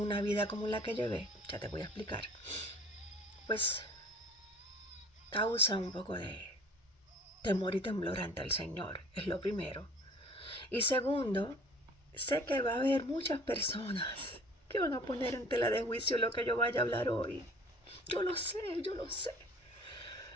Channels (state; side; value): normal; both; correlation 0.49